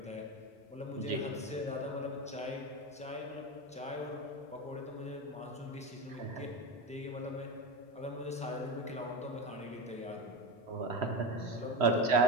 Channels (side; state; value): both; normal; correlation 0.18